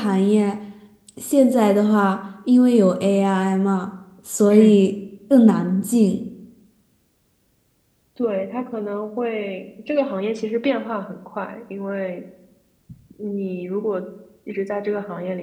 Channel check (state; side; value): identical; both; correlation 1.00